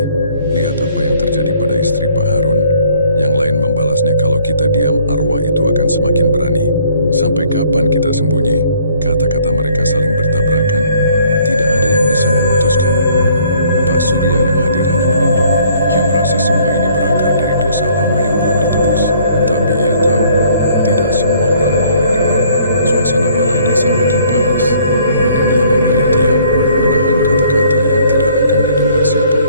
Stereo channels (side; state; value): both; inverted; correlation -0.60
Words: Lihat apa yang terjadi pada istri Pak Harun." Yang lain membalasnya, "Kalau kita diam, arwah itu akan semakin berani. Sampai kapan kita sembunyi?" Kata-kata mereka saling bertabrakan. Tidak ada yang bisa memutuskan. Pak Surya yang hadir hanya menunduk. Ia merasa semua ini berakar dari dosa lama yang belum ditebus. Tapi ia tahu, tidak semua orang mau mendengar. Suasana balai desa makin panas, dan ia memilih diam, menahan kata-kata yang tidak akan didengar